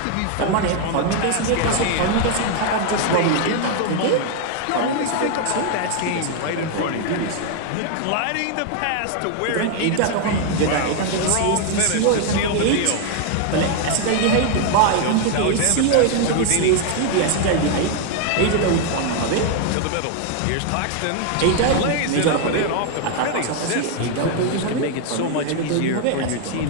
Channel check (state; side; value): different; both; correlation 0.00